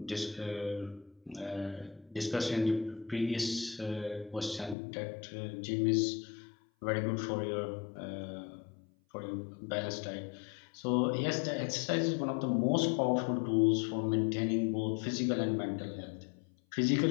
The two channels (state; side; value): drops out; right; at 4.8 s